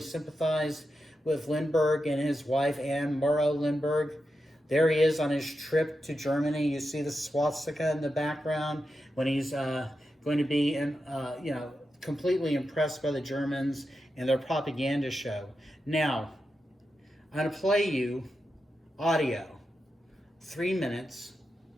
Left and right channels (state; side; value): normal; both; correlation 0.88